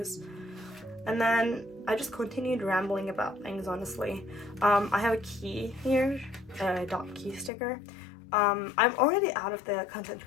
and then I just continued rambling about things, honestly. I have a key here, a dot key sticker. I'm already out of the content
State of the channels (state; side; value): drops out; right; at 7.5 s